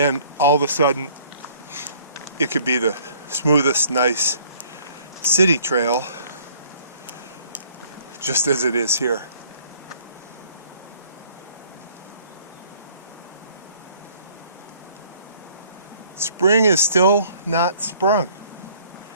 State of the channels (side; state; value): both; inverted; correlation -0.57